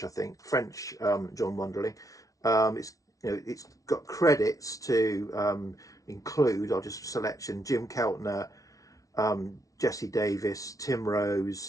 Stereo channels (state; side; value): late; right; 0.17 ms